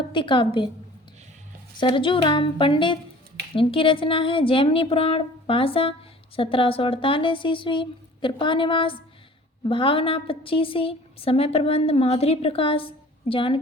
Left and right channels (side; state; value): both; normal; correlation 0.47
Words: काव्य। सरजू राम पंडित, इनकी रचना है जैमिनी पुराण, भाषा 1748 ईस्वी। कृपा निवास, भावना 25, समय प्रबंध माधुरी प्रकाश।